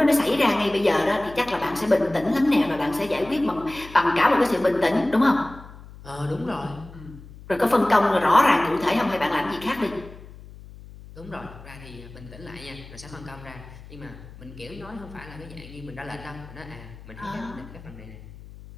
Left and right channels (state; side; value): noise; left; hum, 18 dB below the sound